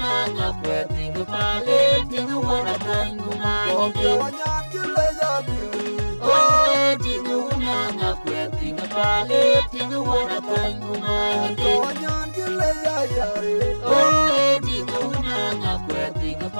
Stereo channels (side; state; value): both; inverted; correlation -1.00